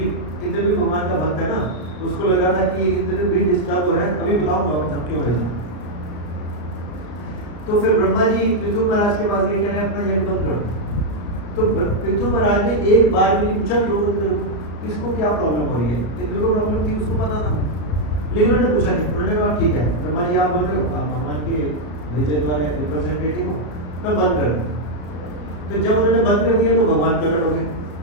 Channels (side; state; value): right; late; 34 ms